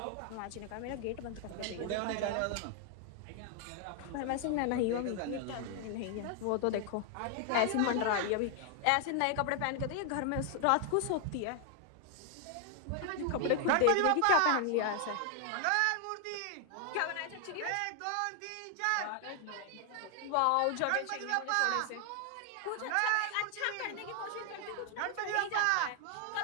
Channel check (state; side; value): different; both; correlation 0.00